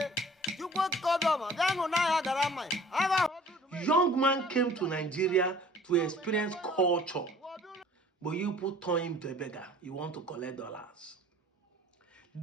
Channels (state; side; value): normal; both; correlation 0.50